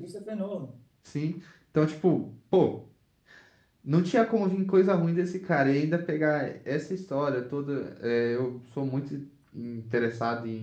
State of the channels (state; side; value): identical; both; correlation 1.00